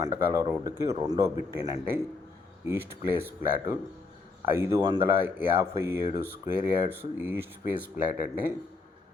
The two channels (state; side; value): quieter; right; 3.9 dB